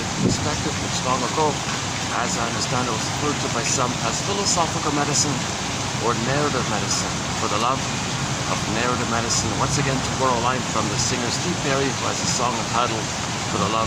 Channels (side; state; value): both; identical; correlation 1.00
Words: perspective, which long ago, as I understand it, was referred to by some as philosophical medicine or narrative medicine. For the love of narrative medicine, once again to borrow a line from the singer Steve Perry, who has a song entitled For the Love